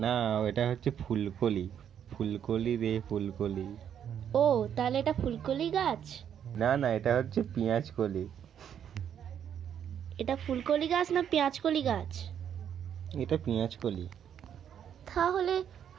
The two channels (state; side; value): quieter; left; 9.0 dB